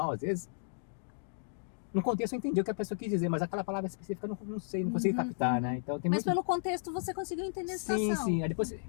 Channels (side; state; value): right; silent; digital silence